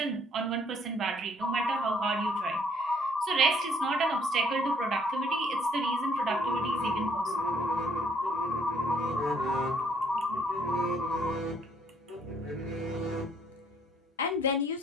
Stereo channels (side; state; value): both; normal; correlation 0.65